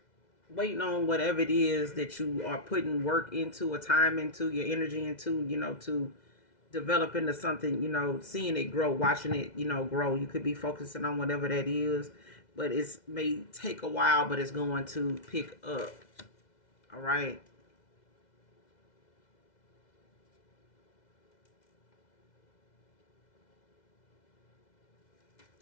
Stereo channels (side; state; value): right; late; 2.0 ms